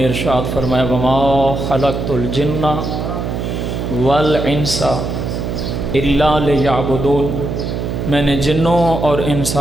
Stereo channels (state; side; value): noise; right; hum, 3 dB below the sound